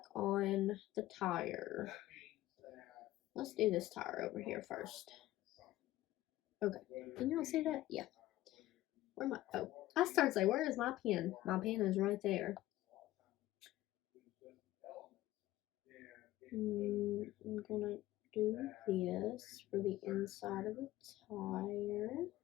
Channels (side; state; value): right; quieter; 15.7 dB